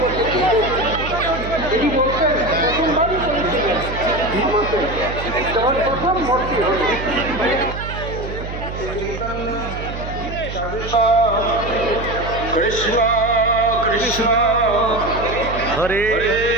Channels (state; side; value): noise; right; hum, 8 dB below the sound